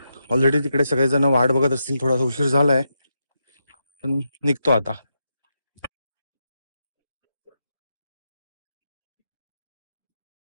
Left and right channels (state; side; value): inverted; both; correlation -0.85